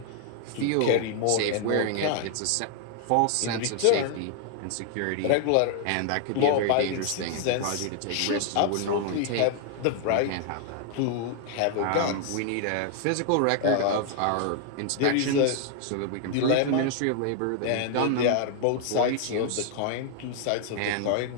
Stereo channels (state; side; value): different; both; correlation 0.00